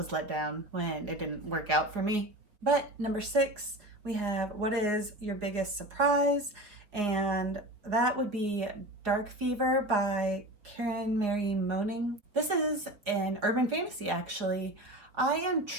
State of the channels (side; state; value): left; late; 4.6 ms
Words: let down when it didn't work out for me. But number 6, we have what is your biggest surprise, and that would be Dark Fever by Karen Mary Moaning. This is an urban fantasy, actually. I am